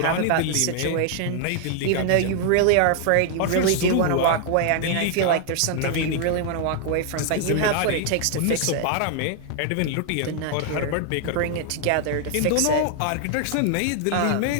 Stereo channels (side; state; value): both; different; correlation 0.00